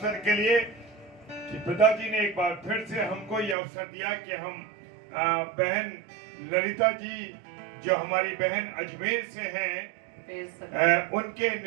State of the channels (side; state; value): left; drops out; at 3.6 s